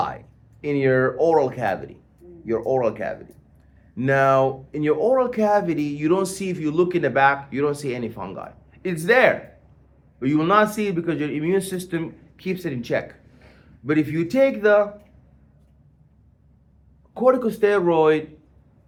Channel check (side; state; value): both; identical; correlation 1.00